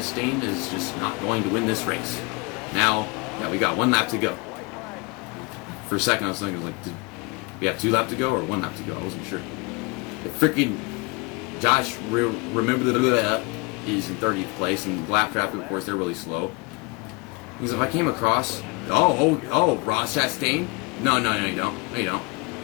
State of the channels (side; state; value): right; quieter; 26.4 dB